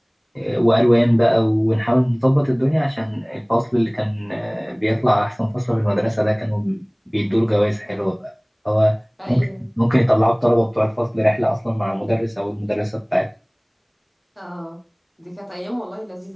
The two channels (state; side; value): identical; both; correlation 1.00